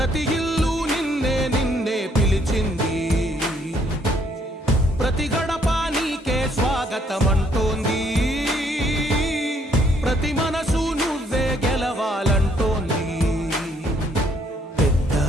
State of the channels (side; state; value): both; normal; correlation 0.68